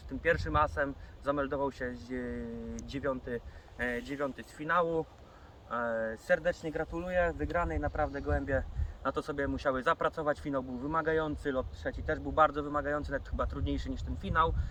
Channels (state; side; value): identical; both; correlation 1.00